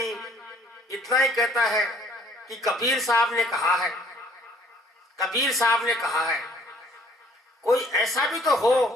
इतना ही कहता है कि कबीर साहब ने कहा है, कबीर साहब ने कहा है। कोई ऐसा भी तो हो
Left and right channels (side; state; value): both; normal; correlation 0.59